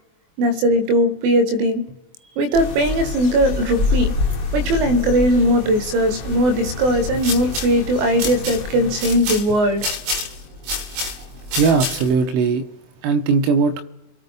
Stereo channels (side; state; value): left; late; 24 ms